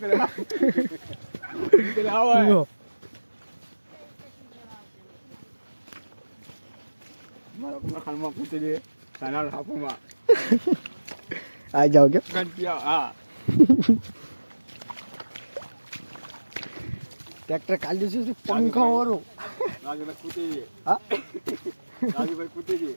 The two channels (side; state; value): both; inverted; correlation -1.00